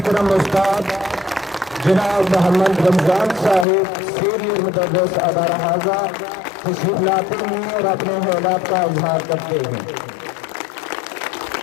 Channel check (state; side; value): drops out; right; at 3.7 s